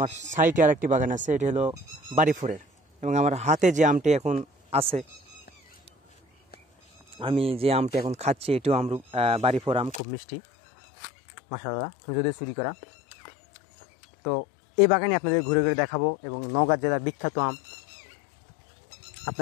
সাইডে আর একটি বাগান আছে, এটি হলো বাড়িফোরের। এবং আমার হাতে যে আমটি এখন আছে, আমি যে আমটি এখন খাচ্ছি, এটিও বাড়িফোর আম, খুব মিষ্টি মাশাআল্লাহ, যদিও চুরি করা। তো এই বাগানে আপনাদের ঘুরে ঘুরে দেখাবো। এবং নওগাঁ জেলার বিখ্যাত আম,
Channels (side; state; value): right; drops out; at 10.0 s